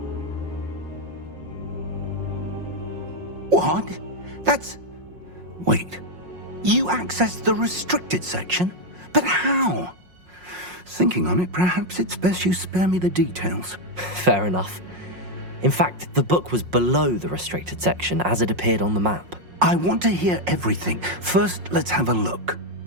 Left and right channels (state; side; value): late; left; 5.5 ms